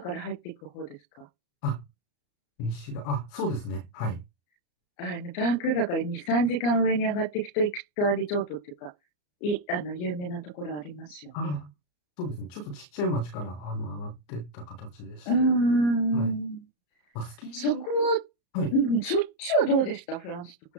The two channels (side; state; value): right; late; 34 ms